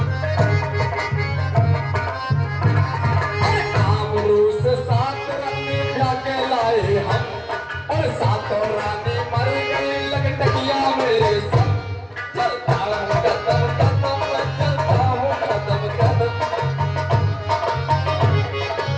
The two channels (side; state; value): both; identical; correlation 1.00